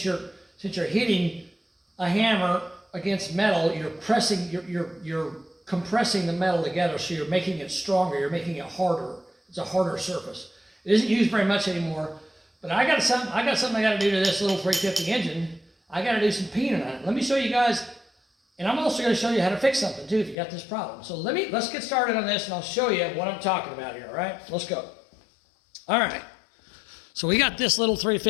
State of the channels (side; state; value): right; drops out; at 20.4 s